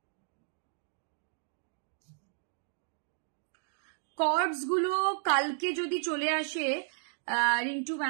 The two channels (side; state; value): left; silent; digital silence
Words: কর্ডস গুলো কালকে যদি চলে আসে রিন্টু